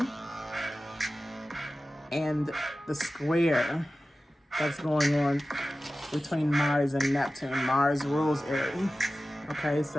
And the square that's going on between Mars and Neptune. Mars rules Aries. Okay,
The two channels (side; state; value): both; normal; correlation 0.95